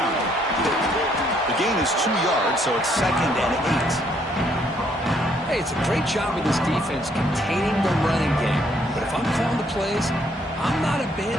The gain is 2 yards, so it's 2nd and 8. Hey, it's a great job of this defense containing the running game. But if I'm calling the plays, I'm not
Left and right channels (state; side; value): normal; both; correlation 0.68